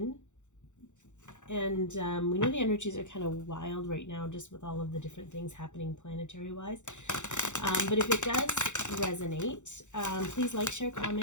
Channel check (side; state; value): right; late; 0.84 ms